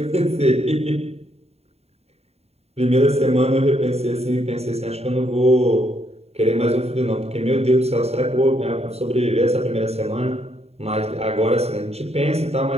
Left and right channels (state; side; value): late; left; 0.30 ms